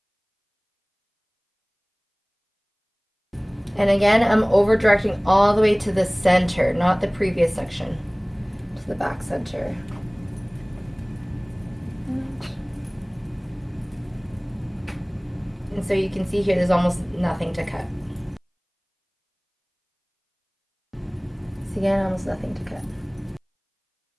And again, I'm over directing all the way to the center, not the previous section, to the back center. And so you can see here there's almost nothing to cut. So again, almost nothing to cut.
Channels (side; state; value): both; identical; correlation 1.00